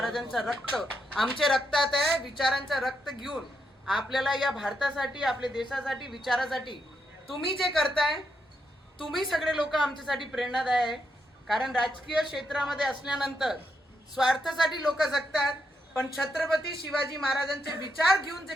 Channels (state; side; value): normal; both; correlation 0.80